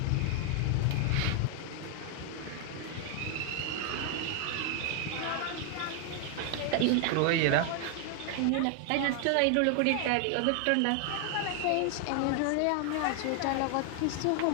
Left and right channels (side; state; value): both; different; correlation 0.00